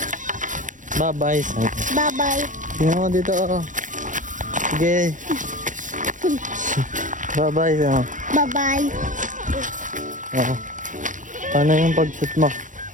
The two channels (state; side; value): late; left; 0.37 ms